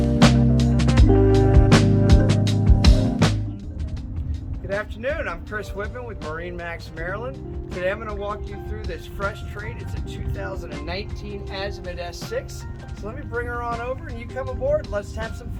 afternoon, I'm Chris Whitman with MarineMax Maryland. Today I'm going to walk you through this fresh trade. It's a 2019 Azimut S6. So let me bring her on over and you come aboard. Let's have some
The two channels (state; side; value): identical; both; correlation 1.00